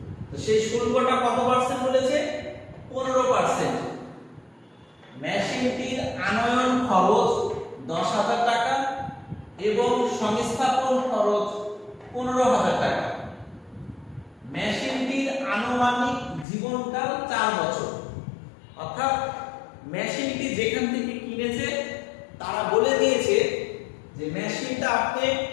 তো সেই শুল্কটা কত পার্সেন্ট বলেছে? 15%। মেশিনটির আনয়ন খরচ 10,000 টাকা এবং সংস্থাপন খরচ 15,000 টাকা। মেশিনটির আনুমানিক জীবনকাল 4 বছর। অর্থাৎ মেশিনটি যেখান থেকে কিনেছে তারা বলে দিয়েছে যে মেশিনটা আপনি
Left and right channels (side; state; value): right; drops out; at 16.4 s